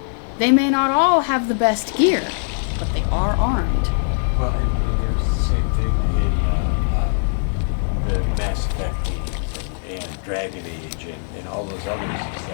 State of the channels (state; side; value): silent; right; 65 dB below the other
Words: They may not all have the best gear, but they are armed. Well, and it was the same thing in the Mass Effect games and Dragon Age and all those others, is